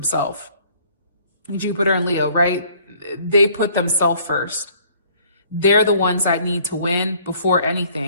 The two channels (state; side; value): inverted; both; correlation -0.58